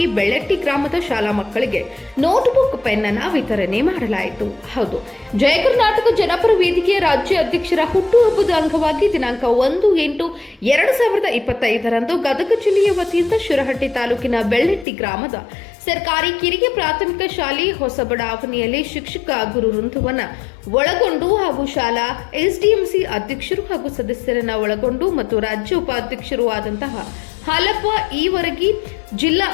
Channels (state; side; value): drops out; right; at 14.9 s